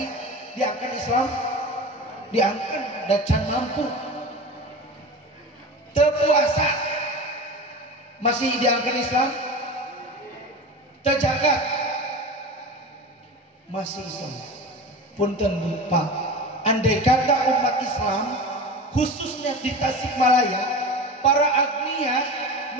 diangkat Islam, diangkat dan can mampu. Teu puasa masih diangkat Islam, teu jagat masih Islam. Punten Pak, andai kata umat Islam khususnya di Tasikmalaya para agnia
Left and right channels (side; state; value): both; normal; correlation 0.31